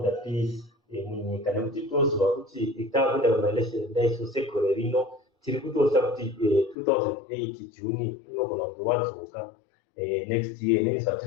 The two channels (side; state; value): right; drops out; at 6.8 s